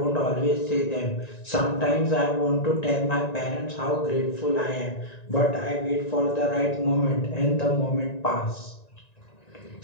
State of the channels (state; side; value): late; right; 1.9 ms